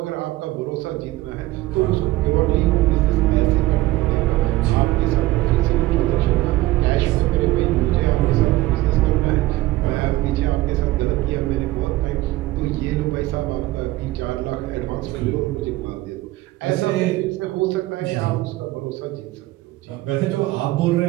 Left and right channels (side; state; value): left; quieter; 17.5 dB